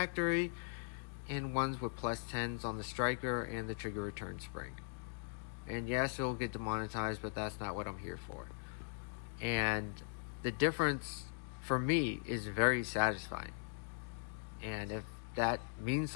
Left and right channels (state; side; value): silent; right; digital silence